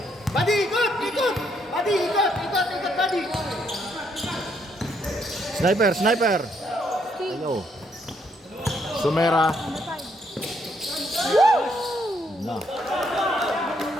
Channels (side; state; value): both; normal; correlation 0.72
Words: Buddy, ikot! Buddy, ikot, buddy! Sniper. Ayo. Sumera. Na.